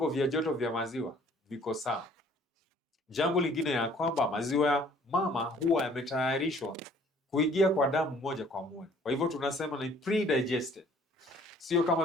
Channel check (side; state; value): both; normal; correlation 0.56